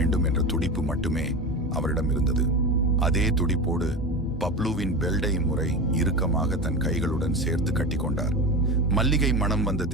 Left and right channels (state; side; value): normal; both; correlation 0.25